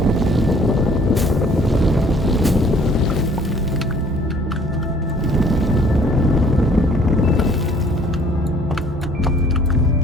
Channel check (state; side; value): normal; both; correlation 0.56